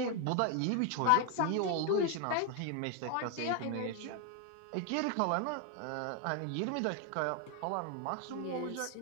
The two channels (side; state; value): both; different; correlation 0.01